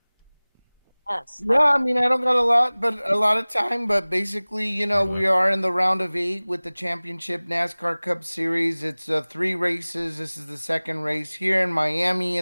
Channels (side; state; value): both; inverted; correlation -1.00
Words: Yes. Yeah, I mean, I don't got a lot of time, but basically, we are in the round of 8 with the championship NASCAR Cup Series. It's 3 races. This is the second race here in Miami